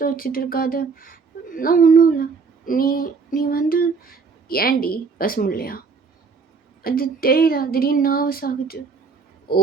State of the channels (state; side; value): quieter; left; 4.9 dB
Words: வச்சுட்டு இருக்காது, நான் ஒன்றும் இல்லை. நீ வந்து ஏண்டி பேச முடியலையா? அது தெரியல, திடீர்னு நர்வஸ் ஆகுது. ஓ,